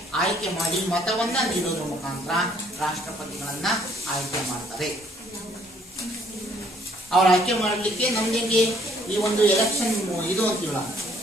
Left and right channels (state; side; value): normal; both; correlation 0.64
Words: ಆಯ್ಕೆ ಮಾಡಿ ಮತವನ್ನ ನೀಡೋದ್ರ ಮುಖಾಂತರ ರಾಷ್ಟ್ರಪತಿಗಳನ್ನ ಆಯ್ಕೆ ಮಾಡ್ತಾರೆ. ಅವ್ರ ಆಯ್ಕೆ ಮಾಡಲಿಕ್ಕೆ ನಮ್ಗೆ ಈ ಒಂದು ಎಲೆಕ್ಷನ್ ಇದು ಅಂತೀವಲ್ಲ,